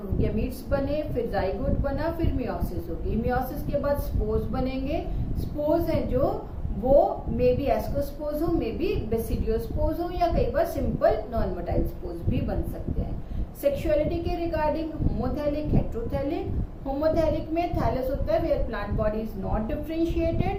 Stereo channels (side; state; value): both; identical; correlation 1.00